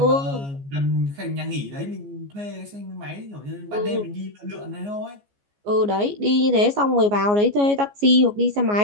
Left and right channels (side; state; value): left; late; 14 ms